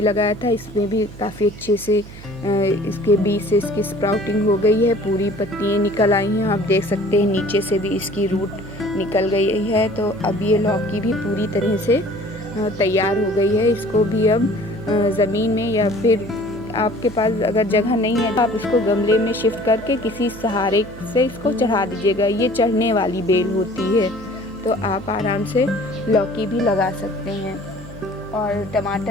लगाया था, इसमें भी काफ़ी अच्छे से इसके बीज से इसकी स्प्राउटिंग हो गई है, पूरी पत्तियाँ निकल आई हैं। आप देख सकते हैं नीचे से भी इसकी रूट निकल गई है। तो अब ये लौकी भी पूरी तरह से तैयार हो गई है। इसको भी अब ज़मीन में या फिर आपके पास अगर जगह नहीं है तो आप इसको गमले में शिफ्ट करके किसी सहारे से इसको चढ़ा दीजिएगा। ये चढ़ने वाली बेल होती है, तो आप आराम से लौकी भी लगा सकते हैं। और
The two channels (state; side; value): noise; right; hum, 16 dB below the sound